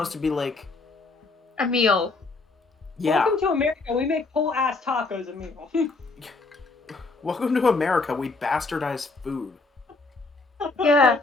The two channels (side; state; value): right; quieter; 3.7 dB